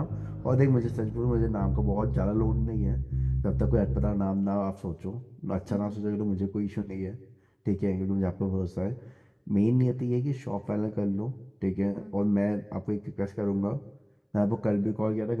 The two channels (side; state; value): both; identical; correlation 1.00